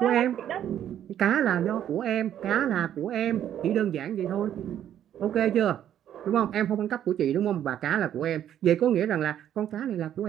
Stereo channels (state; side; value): quieter; left; 10.6 dB